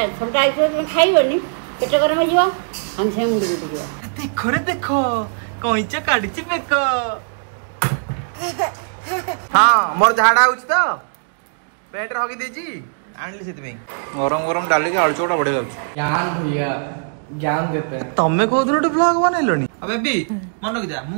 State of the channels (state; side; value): silent; left; digital silence